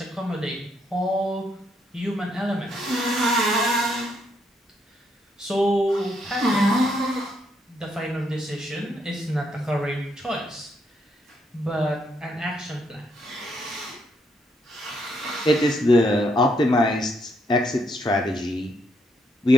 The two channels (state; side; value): normal; both; correlation 0.74